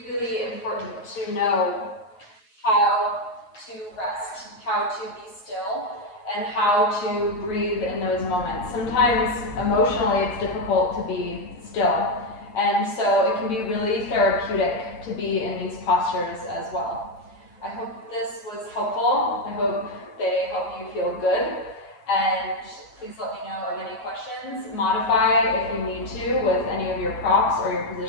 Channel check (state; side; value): late; right; 9.1 ms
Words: really important to know how to rest, how to be still, and how to breathe in those moments. Sometimes emotionally it's difficult to be still, and so it can be really therapeutic to be in these postures as well. I hope this was helpful. I hope they help you feel good, and please let me know of any questions. Modify if you need to with any of your props or your